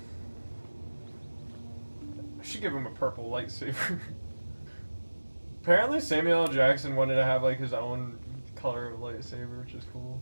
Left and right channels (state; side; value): inverted; both; correlation -1.00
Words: I should give him a purple lightsaber. Apparently Samuel L. Jackson wanted to have like his own color of lightsaber, which is cool.